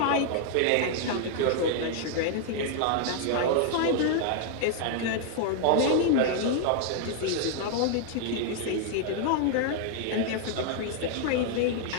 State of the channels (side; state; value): both; different; correlation 0.00